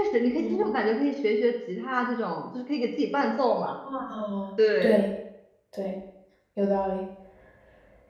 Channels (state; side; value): identical; both; correlation 1.00